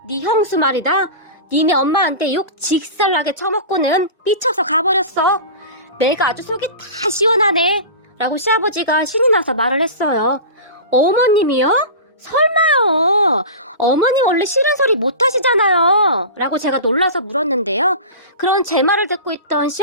네 형수 말이다. 니네 엄마한테 욕 직살나게 쳐먹고는 삐쳐서 가버렸어. 내가 아주 속이 다 시원하네. 라고 시아버지가 신이 나서 말을 했어요. 어머님이요? 설마요. 어머님 원래 싫은 소리 못하시잖아요. 라고 제가 놀라서 물었는데요. 그런 제 말을 듣고 있던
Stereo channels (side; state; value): both; inverted; correlation -0.31